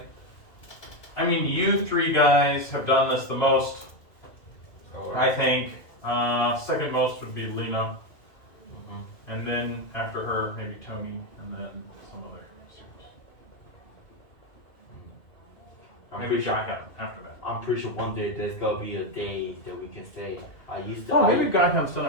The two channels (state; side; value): late; right; 2.4 ms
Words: I mean, you three guys have done this the most, Oh, I think. Second most would be Lena, and then after her, maybe Tony, and then some other students. Maybe Shotgun after that. I'm pretty sure one day there's gonna be a day that we can say I used to. Oh, maybe Guyham's done